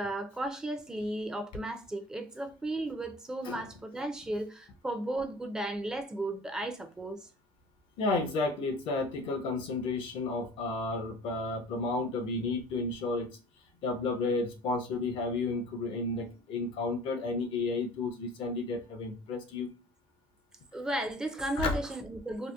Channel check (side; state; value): both; normal; correlation 0.45